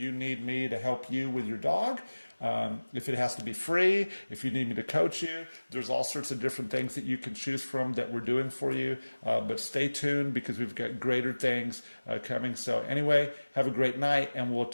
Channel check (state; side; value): inverted; both; correlation -1.00